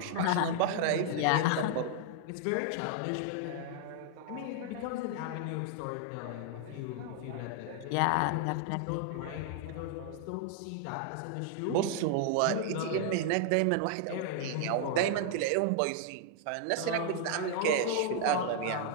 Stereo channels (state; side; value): different; both; correlation 0.00